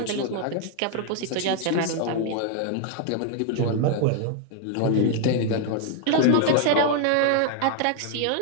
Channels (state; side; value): different; both; correlation 0.00